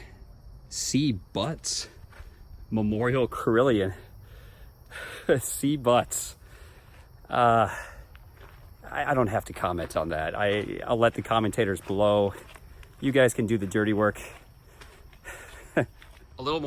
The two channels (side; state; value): both; identical; correlation 1.00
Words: C. Butts Memorial Carillon. C. Butts. I don't have to comment on that. I'll let the commentators below. You guys can do the dirty work. A little